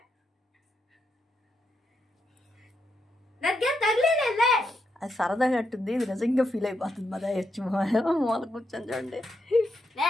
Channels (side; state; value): both; normal; correlation 0.81